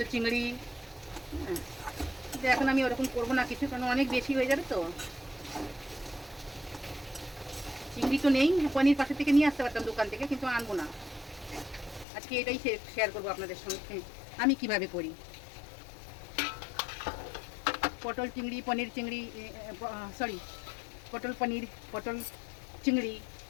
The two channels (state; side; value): drops out; right; at 12.1 s